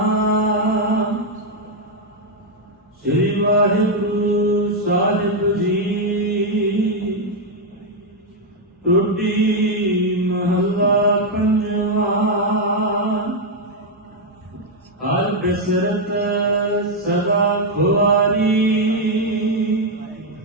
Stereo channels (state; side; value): normal; both; correlation 0.01